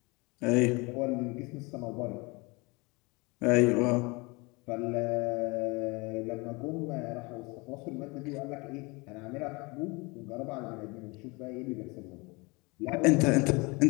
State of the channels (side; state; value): right; quieter; 26.8 dB